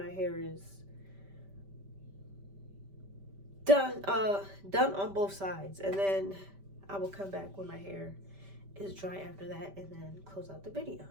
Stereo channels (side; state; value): left; late; 5.1 ms